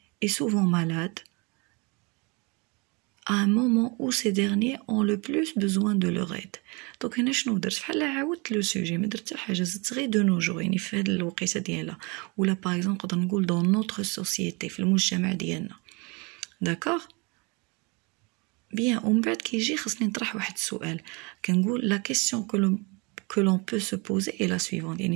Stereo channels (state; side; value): quieter; left; 29.3 dB